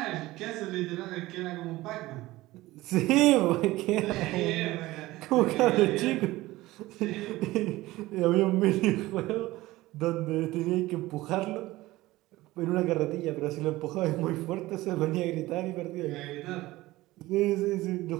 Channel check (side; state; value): left; quieter; 18.2 dB